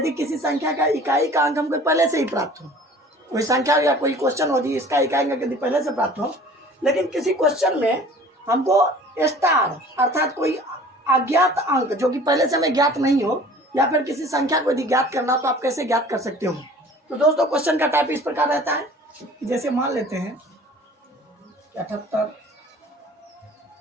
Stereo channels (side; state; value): both; normal; correlation 0.47